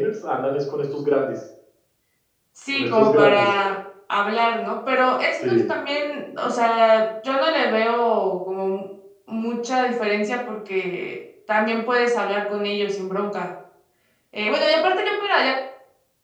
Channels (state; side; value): identical; both; correlation 1.00